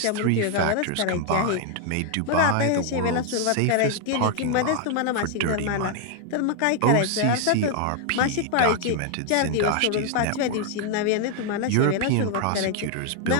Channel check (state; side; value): different; both; correlation 0.00